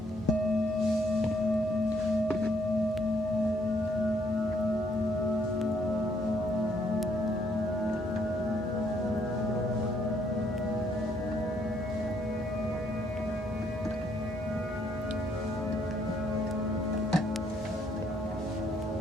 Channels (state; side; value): normal; both; correlation 0.69